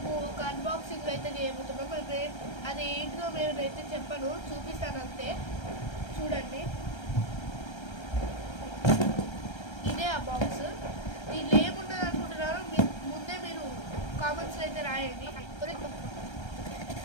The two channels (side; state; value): right; late; 1.3 ms